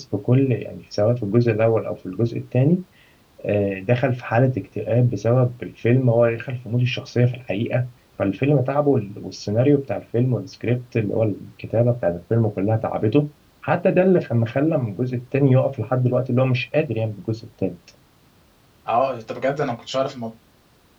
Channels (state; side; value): identical; both; correlation 1.00